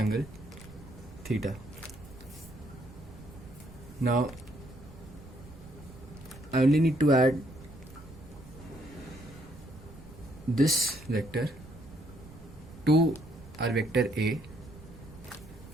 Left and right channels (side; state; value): right; noise; rumble, 17 dB below the sound